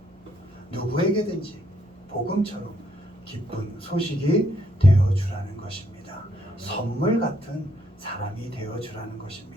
누구에게든지 복음처럼 기쁜 소식이 되어주라는 것입니다. 선물 같은 사람이 되어주라는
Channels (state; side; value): normal; both; correlation 0.72